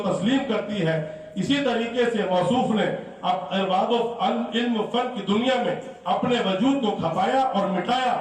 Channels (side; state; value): both; identical; correlation 1.00